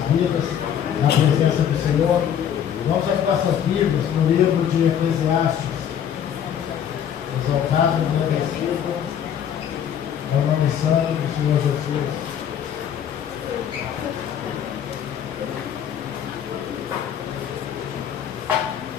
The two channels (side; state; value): right; quieter; 9.0 dB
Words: vidas, na presença do Senhor. Vamos abrir nossas Bíblias no livro de Eclesiastes. Exaltado e agradecido ao nome santo do Senhor Jesus.